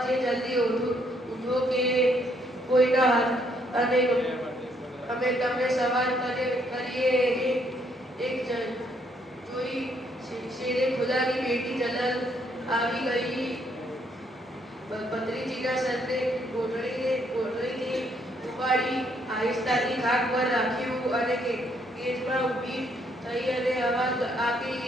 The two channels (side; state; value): both; normal; correlation 0.70